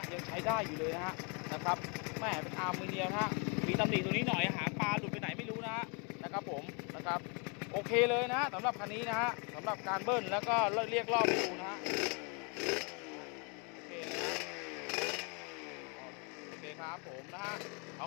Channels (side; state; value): right; quieter; 34.1 dB